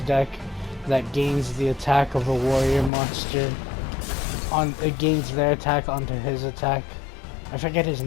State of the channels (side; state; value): right; drops out; at 2.9 s